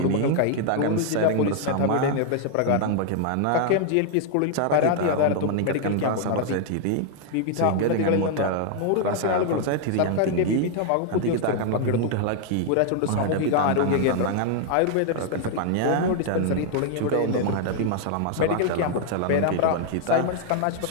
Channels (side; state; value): both; different; correlation 0.00